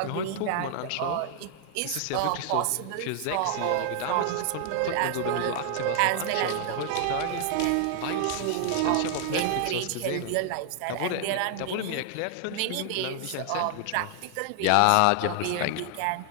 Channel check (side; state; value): both; different; correlation 0.00